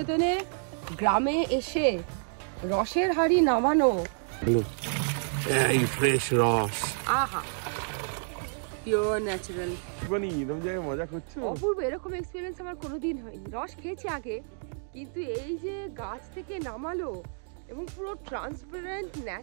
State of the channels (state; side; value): silent; left; 58 dB below the other